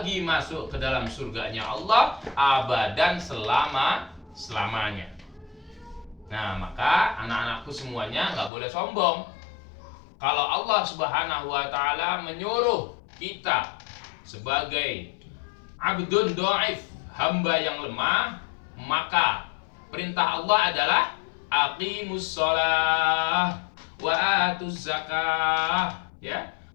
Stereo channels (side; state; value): right; drops out; at 8.5 s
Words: masuk ke dalam surganya Allah abadan, selamanya. Nah, maka anak-anakku semuanya nggak boleh sombong. Kalau Allah Subhanahu wa taala menyuruh kita sebagai abdun dhaif, hamba yang lemah, maka perintah Allah adalah aqimus shalah wa atuz zakah, ya.